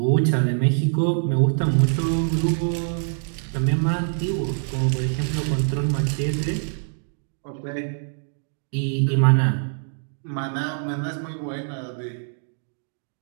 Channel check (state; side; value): silent; left; digital silence